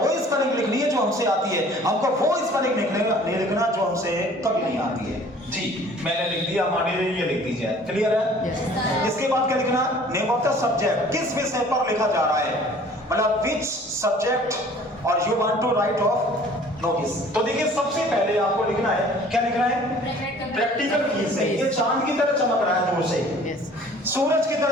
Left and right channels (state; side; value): normal; both; correlation 0.51